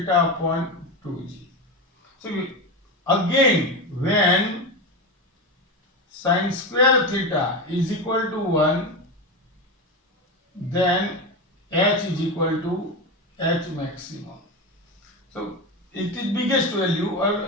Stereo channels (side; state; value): both; normal; correlation 0.18